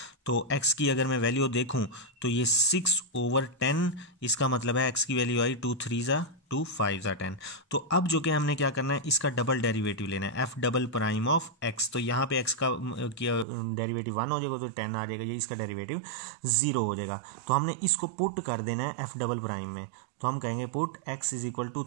तो x की अगर मैं वैल्यू देखूं तो ये 6/10, इसका मतलब है x की वैल्यू आई 2 3 ज़ा 2 5 ज़ा 10। तो अब जो कि हमने क्या करना है, इसका डबल डेरिवेटिव लेना है, f double prime of x। तो यहाँ पे x का डेरिवेटिव 1 हो जाएगा, तो 10 आ जाएगा, ये इसका डेरिवेटिव 0 हो जाएगा। तो हमने इसको पुट कर देना है f डबल प्राइम में। तो हम कहेंगे put x is equal to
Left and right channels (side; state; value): left; drops out; at 13.5 s